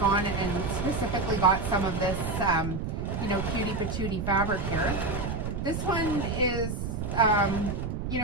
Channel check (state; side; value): noise; right; rumble, 4 dB below the sound